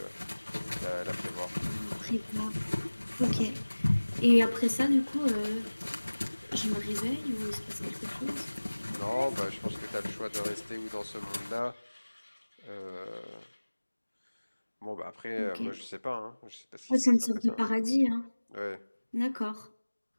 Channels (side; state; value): both; inverted; correlation -1.00